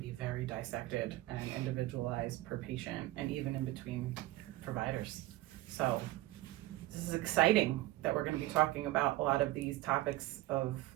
very dissected and individualized per patient and even in between providers. So this is exciting that we're going to be talking about a lot of these topics of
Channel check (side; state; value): left; quieter; 17.7 dB